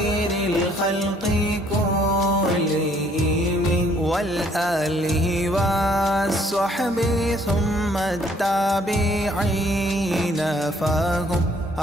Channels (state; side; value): normal; both; correlation 0.63